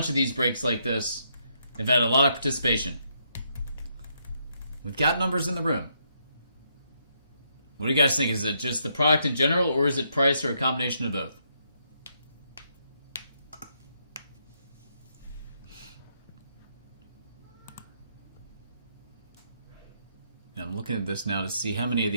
of these breaks like this. They've had a lot of participation. We've got numbers in the room. What do you guys think? Is it just the product in general, or is it price, or a combination of both? I'm looking at this now to see how many of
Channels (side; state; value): both; inverted; correlation -0.76